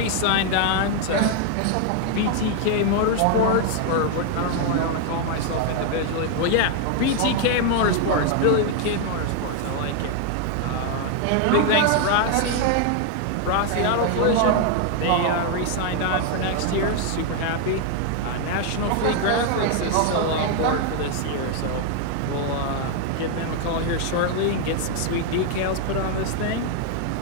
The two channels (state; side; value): different; both; correlation 0.00